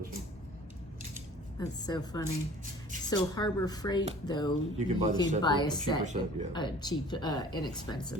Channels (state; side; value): normal; both; correlation 0.48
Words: this one. That's so funny. So Harbor Freight, though, you can buy a set, set, yeah. A cheap,